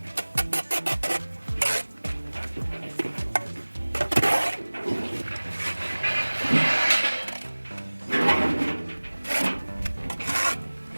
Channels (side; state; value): both; inverted; correlation -1.00